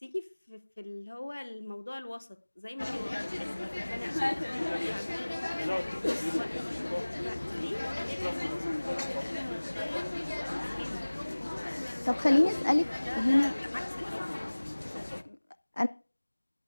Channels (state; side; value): inverted; both; correlation -1.00